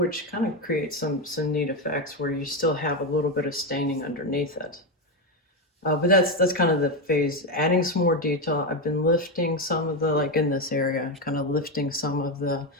kind of creates some neat effects where you still have a little bit of staining underneath it. But that's kind of the phase, adding some more detail. I've been lifting some of the, like in this area, kind of lifting some of the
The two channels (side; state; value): both; normal; correlation 0.10